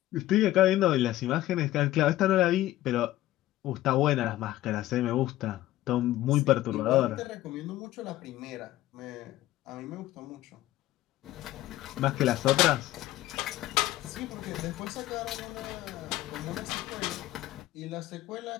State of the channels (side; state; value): right; quieter; 15.3 dB